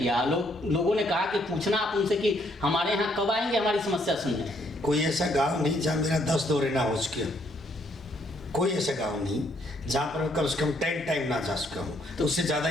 लोगों ने कहा कि पूछना आप उनसे कि हमारे यहाँ कब आएंगे हमारी समस्या सुनने। कोई ऐसा गांव नहीं जहाँ मेरा 10 दौरे ना हो चुके, कोई ऐसा गांव नहीं जहाँ पर कम से कम 10 टाइम ना जा चुका हूँ, तो उससे ज़्यादा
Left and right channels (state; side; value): normal; both; correlation 0.69